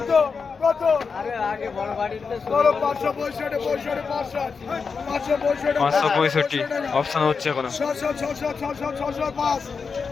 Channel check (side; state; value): right; quieter; 5.3 dB